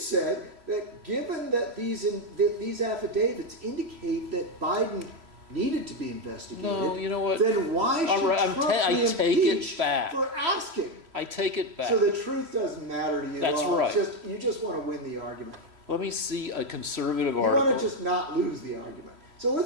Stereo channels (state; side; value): late; left; 3.0 ms